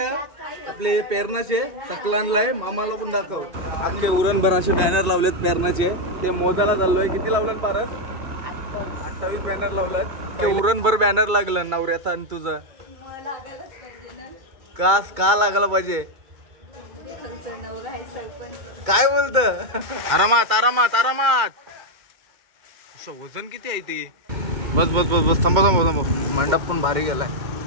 आपले पेरणाचे सकलानलाय मामाला पण दाखव. आमचे उरणभराचे बॅनर लावलेत पेरणाचे, ते मोजायला चाललोय. किती लावलं पारस? 28 बॅनर लावलात. ते उरणभर बॅनर लागलं नवऱ्याचा आणि तुझा. का लागला पाहिजे? काय बोलत? आरामात आरामात आरामात. वजन किती आहे ते? बस बस बस बस थांबा थांबा थांबा. मंडप पण भारी गेलाय.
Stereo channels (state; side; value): late; left; 2.2 ms